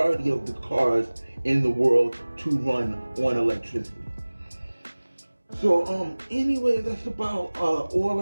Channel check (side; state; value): both; inverted; correlation -1.00